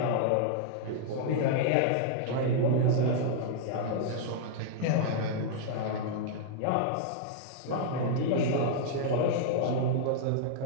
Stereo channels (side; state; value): both; different; correlation -0.01